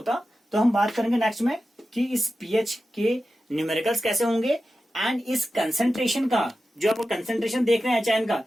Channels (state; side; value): normal; both; correlation 0.93